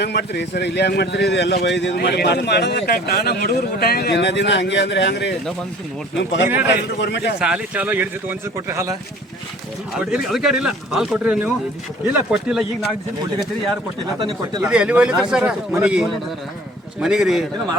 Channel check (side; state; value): both; normal; correlation 0.49